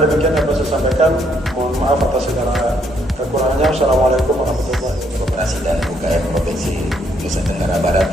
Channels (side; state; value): both; normal; correlation 0.71